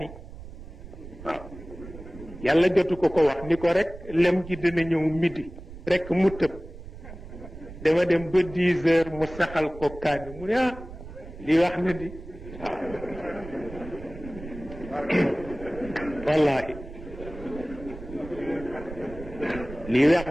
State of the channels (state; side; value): noise; right; rumble, 14 dB below the sound